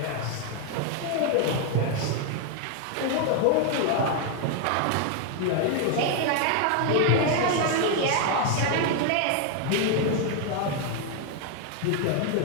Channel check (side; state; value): both; different; correlation 0.01